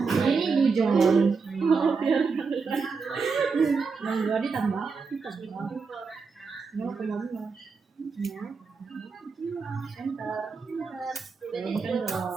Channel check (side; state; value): left; quieter; 4.9 dB